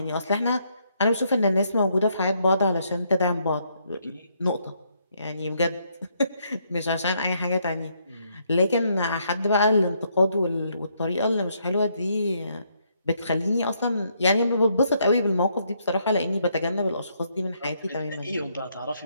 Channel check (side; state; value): both; inverted; correlation -0.73